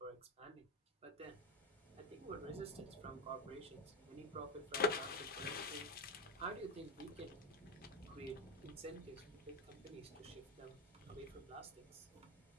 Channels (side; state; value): both; normal; correlation 0.12